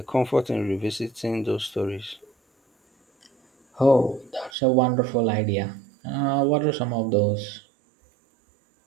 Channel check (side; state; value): left; drops out; at 4.5 s